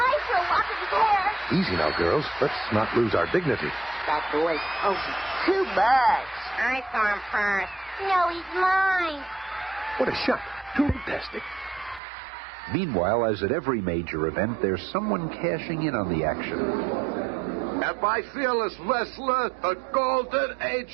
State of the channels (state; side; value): drops out; left; at 12.0 s